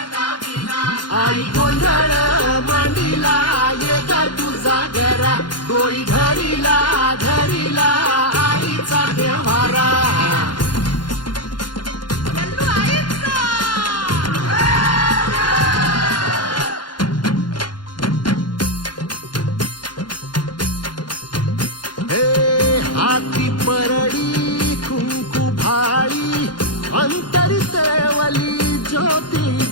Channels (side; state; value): right; late; 0.71 ms